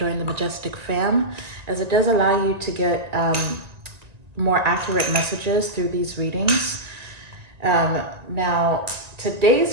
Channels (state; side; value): late; left; 1.9 ms